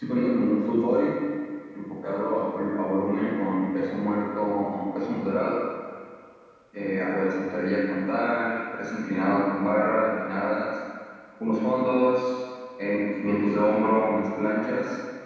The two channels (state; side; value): identical; both; correlation 1.00